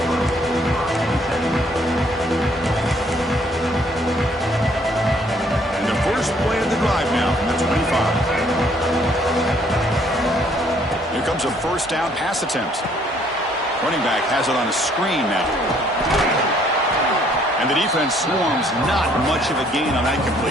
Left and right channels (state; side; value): normal; both; correlation 0.64